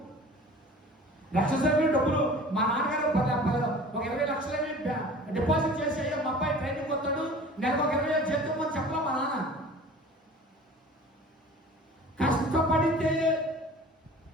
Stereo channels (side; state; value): both; normal; correlation 0.43